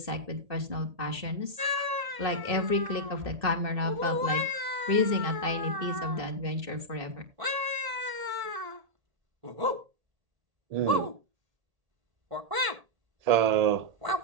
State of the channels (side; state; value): left; late; 1.7 ms